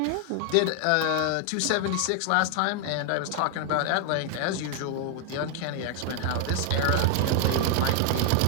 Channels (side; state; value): both; different; correlation 0.00